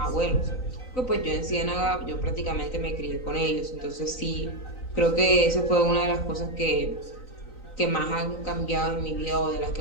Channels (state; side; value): late; right; 3.9 ms